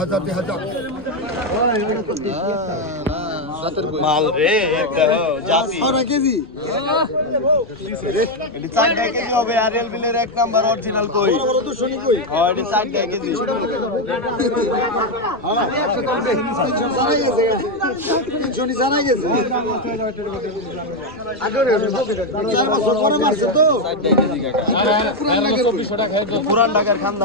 মাল রে এটা জাতি 6 কেজি এটা 4 কেজি হবে আরএল বিলের এক নাম্বার অরিজিনাল কই হয় এটা 4 কেজি পুরান ঢাকার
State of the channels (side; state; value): left; noise; rumble, 25 dB below the sound